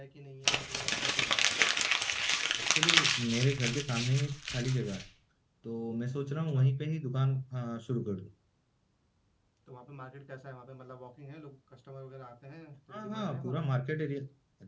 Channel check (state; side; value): identical; both; correlation 1.00